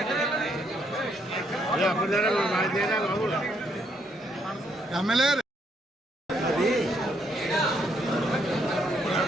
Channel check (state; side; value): normal; both; correlation 0.73